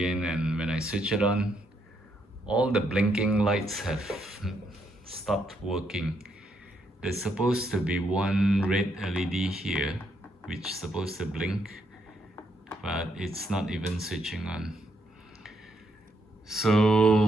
and when I switch it on, all the blinking lights have stopped working. There's supposed to be one red LED here, which is supposed to blink, but it's not even switching on.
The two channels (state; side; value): normal; both; correlation 0.76